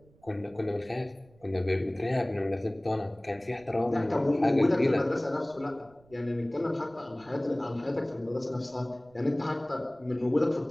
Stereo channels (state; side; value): noise; right; rumble, 28 dB below the sound